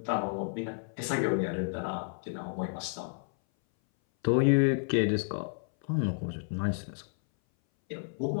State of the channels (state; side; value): silent; right; 57 dB below the other